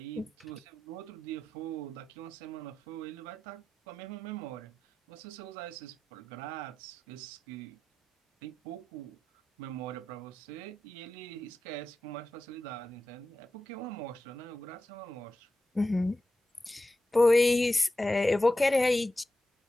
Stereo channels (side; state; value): both; normal; correlation 0.92